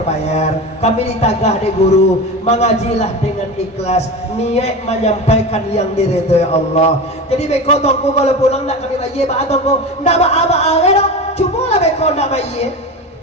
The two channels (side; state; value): both; normal; correlation 0.27